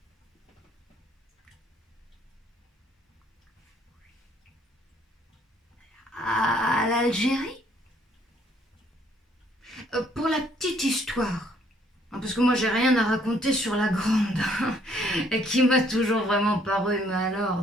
à l'Algérie? Pour la petite histoire, parce que moi j'ai rien à raconter sur la grande, et qui m'a toujours vraiment paru, mais alors,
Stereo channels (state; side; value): normal; both; correlation 0.65